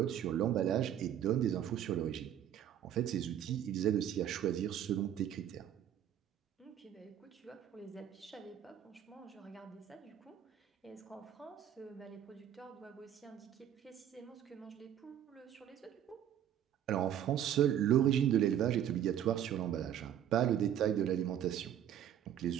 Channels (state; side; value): quieter; left; 10.3 dB